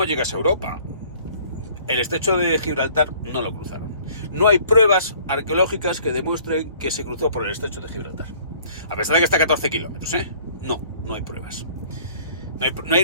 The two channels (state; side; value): inverted; both; correlation -0.54